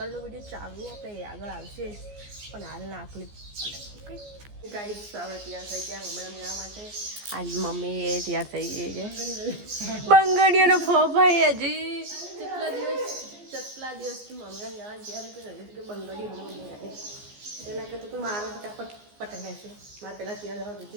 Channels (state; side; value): late; left; 14 ms